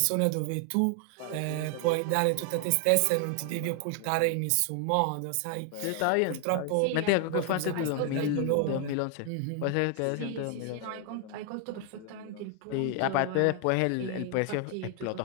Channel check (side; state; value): both; different; correlation 0.00